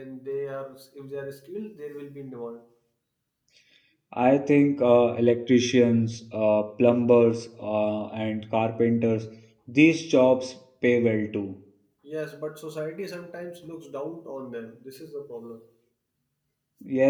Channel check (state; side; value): identical; both; correlation 1.00